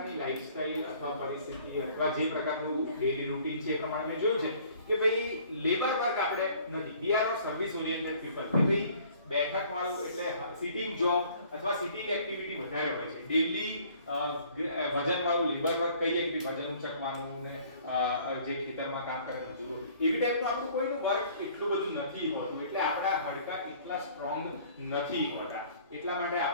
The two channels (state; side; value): inverted; both; correlation -0.55